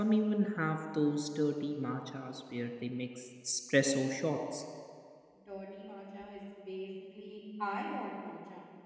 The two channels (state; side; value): identical; both; correlation 1.00